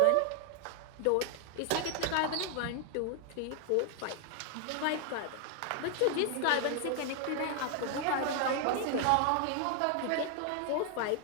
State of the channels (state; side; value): different; both; correlation 0.00